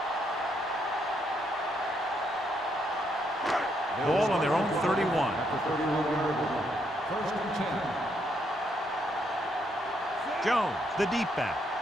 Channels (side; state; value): both; normal; correlation 0.75